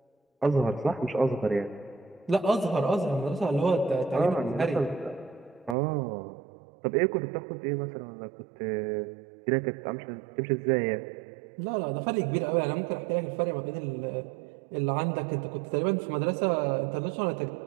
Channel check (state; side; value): drops out; left; at 5.8 s